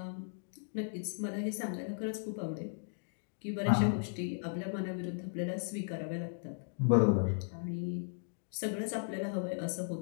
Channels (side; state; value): right; silent; digital silence